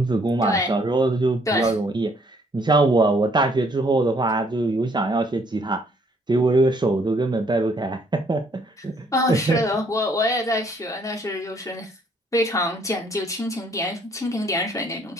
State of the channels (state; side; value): normal; both; correlation 0.65